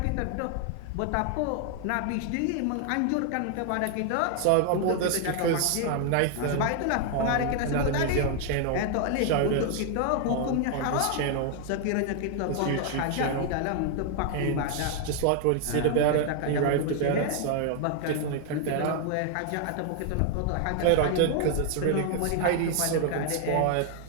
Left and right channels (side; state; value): both; different; correlation 0.00